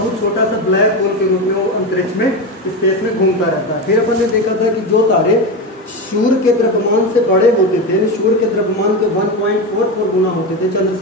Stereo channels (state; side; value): normal; both; correlation 0.17